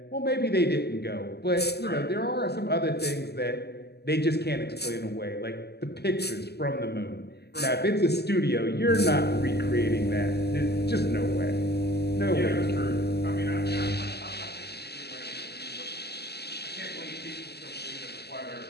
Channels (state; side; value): late; right; 0.47 ms